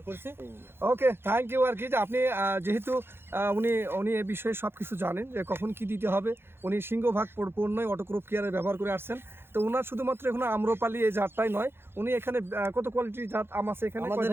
করছি। ওকে, থ্যাংক ইউ। আর কি যে আপনি যেহেতু উনি এই বিষয়ে সব কিছু জানেন যে কখন কি দিতে হবে, উনি সিংহভাগ পণ্যই অটোক্রপ কেয়ারে ব্যবহার করে আসছেন। তো ওনার শুধুমাত্র এখন আম্রপালি এই জাতটাই নয়, উনি এখানে কত কোয়ালিটির জাত আম আছে এখানে? আমাদের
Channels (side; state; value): left; late; 0.11 ms